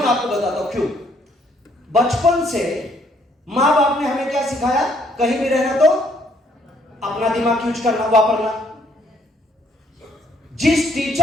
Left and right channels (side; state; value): both; normal; correlation 0.66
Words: आपको बताता हूं क्यों। बचपन से मां बाप ने हमें क्या सिखाया, कहीं भी रहना तो अपना दिमाग यूज करना, वापरना। जिस